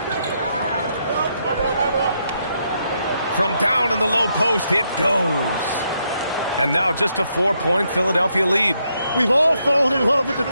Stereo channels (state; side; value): inverted; both; correlation -0.78